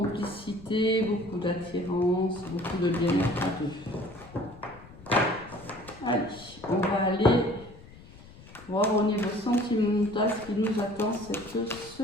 beaucoup d'attirance, beaucoup de bien-être à deux. Allez, on va aller voir au niveau sentimental ce qui nous attend cette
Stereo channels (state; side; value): noise; left; rumble, 20 dB below the sound